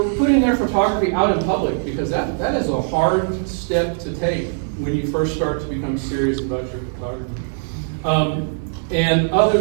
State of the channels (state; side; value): silent; left; digital silence